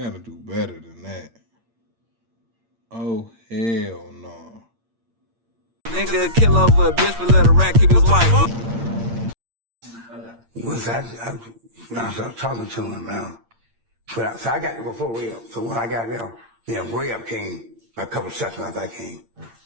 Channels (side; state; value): left; late; 8.7 ms